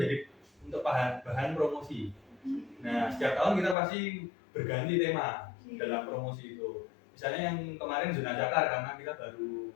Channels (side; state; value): right; drops out; at 3.8 s